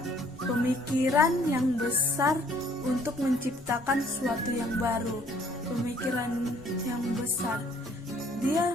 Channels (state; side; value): normal; both; correlation 0.61